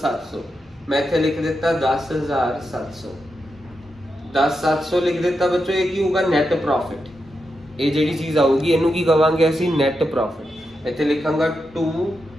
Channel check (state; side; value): normal; both; correlation 0.86